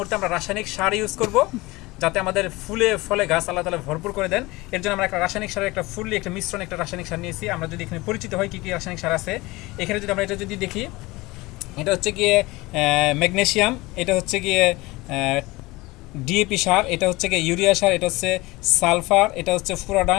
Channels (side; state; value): right; quieter; 21.6 dB